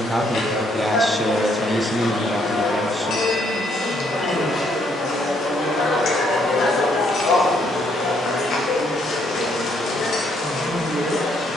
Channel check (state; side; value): normal; both; correlation 0.70